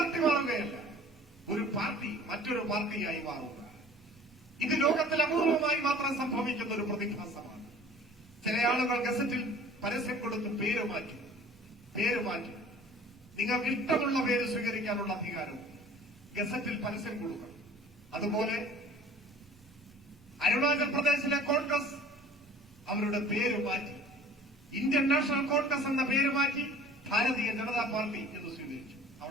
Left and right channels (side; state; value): both; normal; correlation 0.47